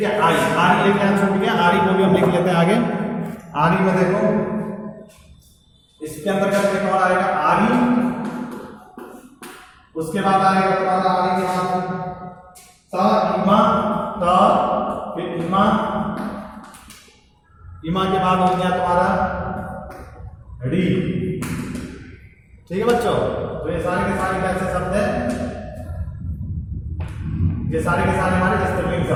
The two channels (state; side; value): identical; both; correlation 1.00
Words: है। आरी, आरी एक यहाँ छूट गया, आरी को भी हम लिख लेते हैं आगे। आरी में देखो, इसके अंतर्गत एक और आएगा आरी, उसके बाद आएगा तुम्हारा आरी के बाद ता, इमा, ता, फिर इमा, इमा के बाद हो गया तुम्हारा री, ठीक है बच्चों। तो ये सारे के सारे कैसे शब्द हैं? ये सारे के सारे हमारे स्त्रीलिंग